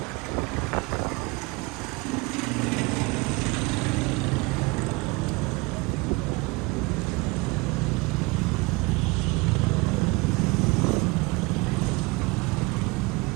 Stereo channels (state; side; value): quieter; left; 24.8 dB